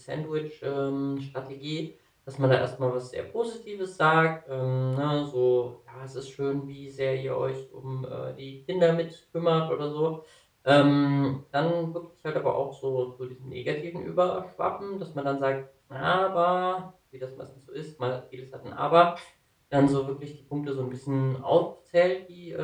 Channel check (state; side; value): identical; both; correlation 1.00